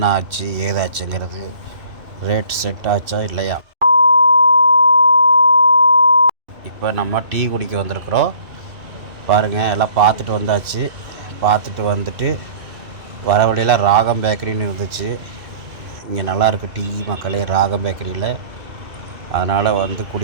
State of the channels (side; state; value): left; late; 2.6 ms